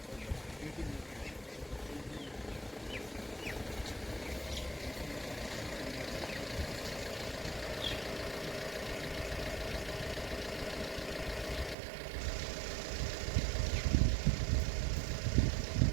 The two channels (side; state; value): left; drops out; at 11.8 s